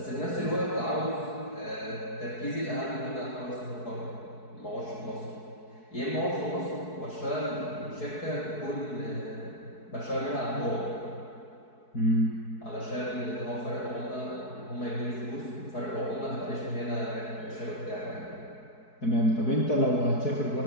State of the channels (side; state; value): right; late; 4.6 ms